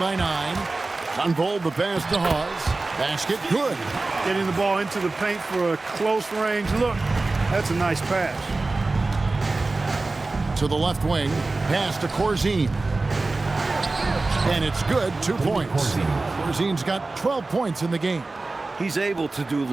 9. Unfold the pass to Hawes. Basket good. Getting the ball into the paint for a close range look. That's a nice pass. To the left wing. Pass to Corzine. And it's good. 2 points. Corzine's got 12 points in the game. He's able to do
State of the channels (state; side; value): quieter; left; 3.4 dB